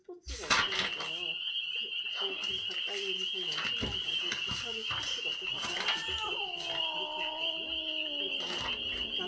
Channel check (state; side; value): identical; both; correlation 1.00